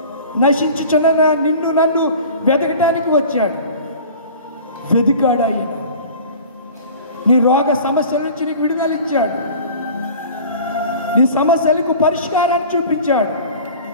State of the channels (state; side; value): inverted; both; correlation -0.41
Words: నశించుచున్న నిన్ను నన్ను వెతకటానికి వచ్చాడు. వెతికాడు ఆయన. నీ రోగ సమస్యల నుంచి నీకు విడుదల ఇచ్చాడు. నీ సమస్యలకు పరిష్కారాన్ని చూపించాడు.